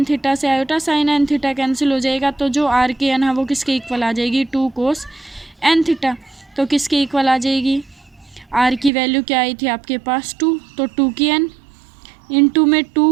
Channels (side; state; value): left; drops out; at 8.9 s